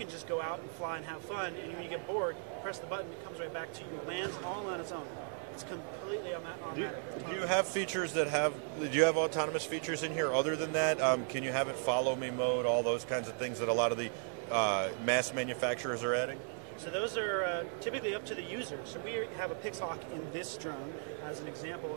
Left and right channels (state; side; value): silent; left; 54 dB below the other